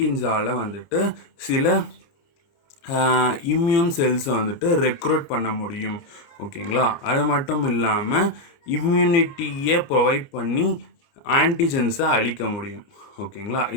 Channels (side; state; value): right; late; 29 ms